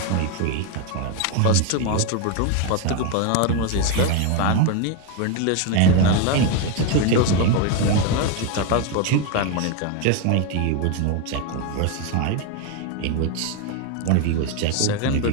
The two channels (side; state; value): both; different; correlation 0.02